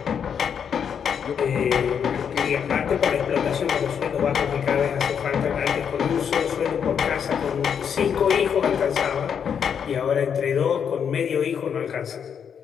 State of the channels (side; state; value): right; quieter; 7.6 dB